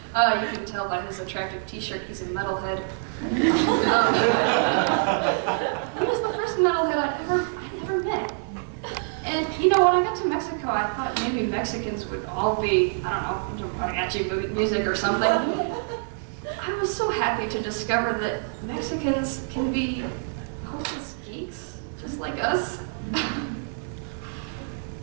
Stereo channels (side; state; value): left; silent; digital silence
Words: can tell by his attractive t-shirt he's a metalhead. He was the first metalhead I'd ever met. And you know, when I got to Mexico, I thought maybe Mexicans would all be, I don't know, into mariachi music or something. I was so happy to discover that Mexicans can be hopeless geeks, just like us.